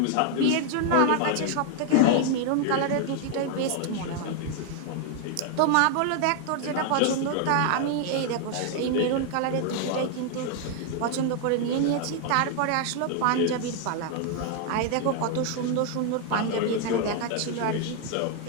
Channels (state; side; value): different; both; correlation 0.00